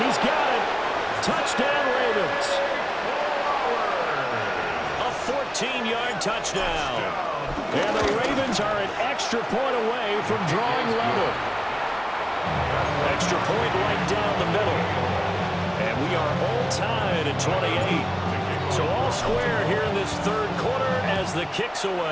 got it. Touchdown, Ravens. A 14-yard touchdown. And the Ravens are an extra point away from drawing level. Extra point right down the middle. And we are all tied at 28. So all square here in this third quarter as the kick's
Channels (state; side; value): identical; both; correlation 1.00